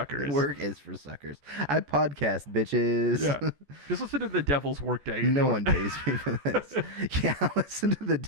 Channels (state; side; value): late; left; 14 ms